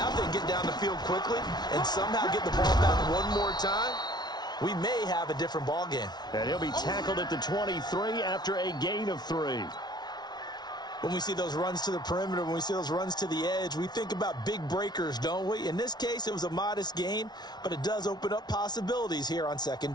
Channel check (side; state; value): right; late; 0.20 ms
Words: if they can get down the field quickly and somehow get the ball back one more time, we may have a different ball game. And he'll be tackled at the 23 after a gain of 3. When we see those runs to the perimeter, when we see those runs to the edge, we think about big breakers, don't we? In this case, it was a modest gain, but it does open up possibilities here on 2nd